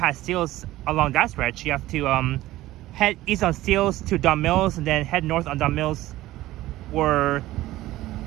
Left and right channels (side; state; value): left; quieter; 16.2 dB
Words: Steeles along that stretch. You have to head east on Steeles to Duncan Mills, and then head north on Duncan Mills, where